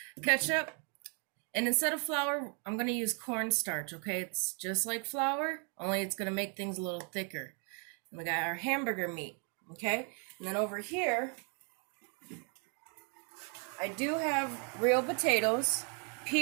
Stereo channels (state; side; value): quieter; left; 40.0 dB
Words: Ketchup, and instead of flour, I'm going to use cornstarch, okay? It's just like flour, only it's going to make things a little thicker. And we got our hamburger meat, okay? And then over here, I do have real potatoes,